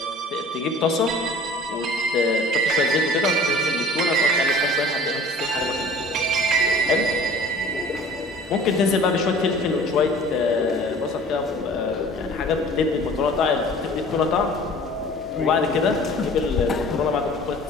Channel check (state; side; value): normal; both; correlation 0.47